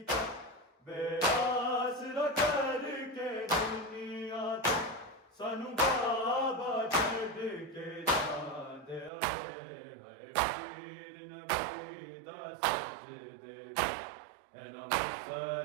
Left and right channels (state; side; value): drops out; left; at 9.1 s